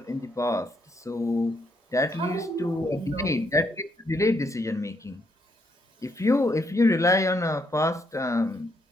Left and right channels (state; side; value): normal; both; correlation 0.75